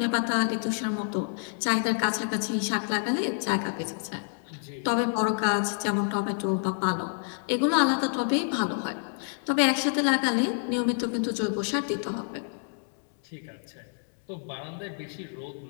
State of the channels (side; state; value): right; silent; 59 dB below the other